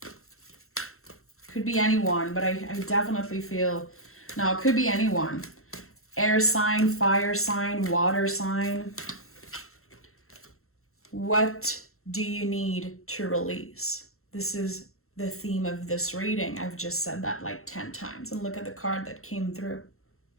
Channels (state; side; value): late; right; 0.62 ms